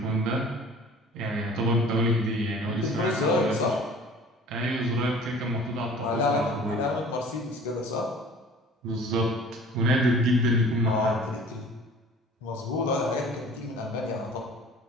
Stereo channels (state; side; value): normal; both; correlation 0.46